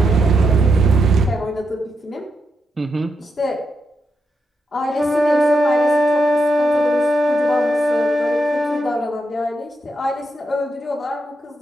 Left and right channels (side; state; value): both; normal; correlation 0.84